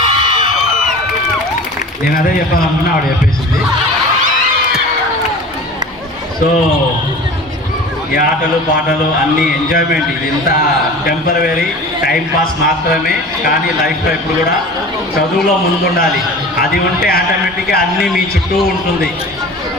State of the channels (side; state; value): both; normal; correlation 0.38